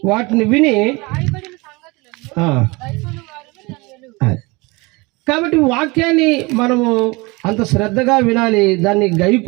వాటిని విని. కాబట్టి వాక్యాన్ని మనము అంత శ్రద్ధగా వినాలి, దాన్ని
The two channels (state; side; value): quieter; left; 25.2 dB